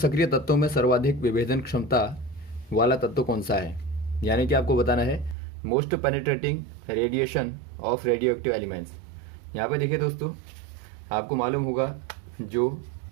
तत्वों में सर्वाधिक विभेदन क्षमता वाला तत्व कौन सा है। यानी कि आपको बताना है most penetrating radiation of radio active elements. यहाँ पे देखिए दोस्तों, आपको मालूम होगा जो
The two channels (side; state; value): left; drops out; at 5.4 s